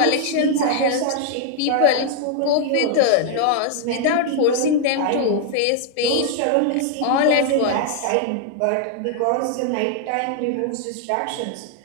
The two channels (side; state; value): both; different; correlation 0.00